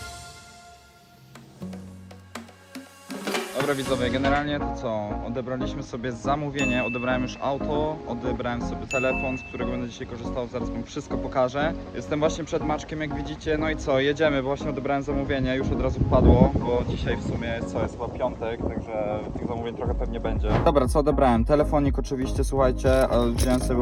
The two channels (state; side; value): identical; both; correlation 1.00